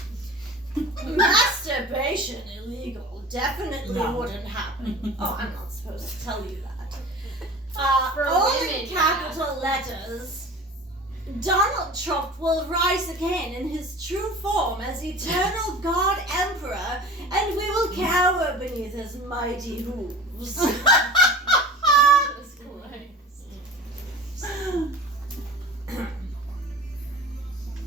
Masturbation illegal. Definitely No. wouldn't happen. Oh, I'm not supposed to tell you that. For All women, in capital letters. Donald Trump will rise again in his true form as eternal God Emperor, and we will cower beneath his mighty hooves. Jesus Christ.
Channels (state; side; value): normal; both; correlation 0.38